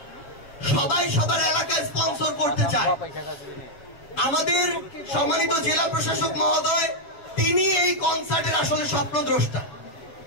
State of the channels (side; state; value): right; late; 7.0 ms